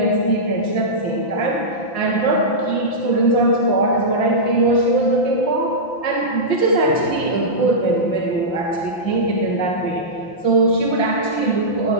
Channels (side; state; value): right; late; 5.9 ms